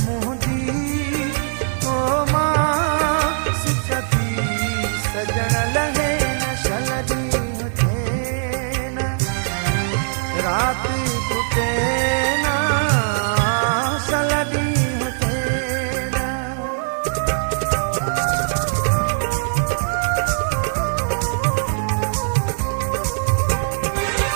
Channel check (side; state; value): left; silent; digital silence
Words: मोहदी ओ माँ सिकती सजन लगे न सलडी होते ना रात टूटे ना सलडी होते ना